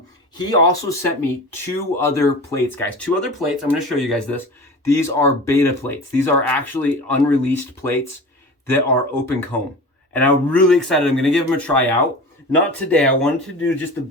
He also sent me 2 other plates, guys. 2 other plates. I'm going to show you guys this. These are beta plates. These are actually unreleased plates that are open comb. And I'm really excited. I'm going to give them a try out. Not today. I wanted to do just the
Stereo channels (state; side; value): normal; both; correlation 0.34